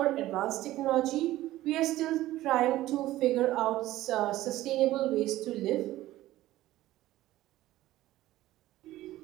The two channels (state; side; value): quieter; left; 15.5 dB